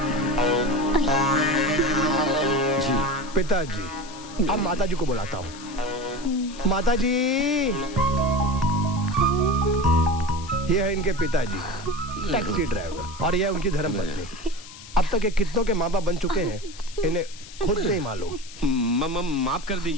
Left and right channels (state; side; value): noise; left; hiss, 17 dB below the sound